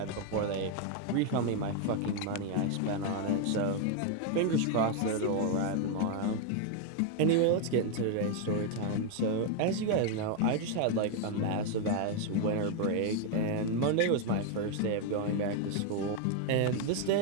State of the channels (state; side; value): different; both; correlation 0.00